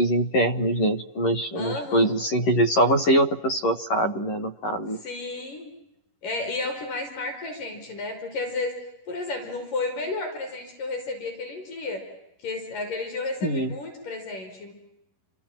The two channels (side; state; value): right; late; 11 ms